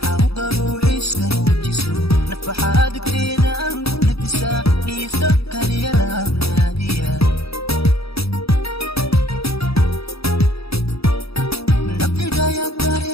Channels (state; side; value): late; right; 0.77 ms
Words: ruuxiiska nuujiso nafaxaad agteeda aan ku nafisaa dhiisa kaliya laagnaadiya naftigaya